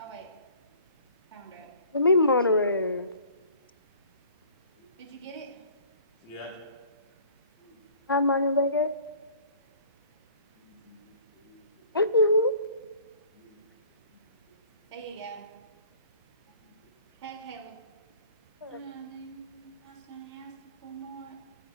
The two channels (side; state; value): both; inverted; correlation -0.51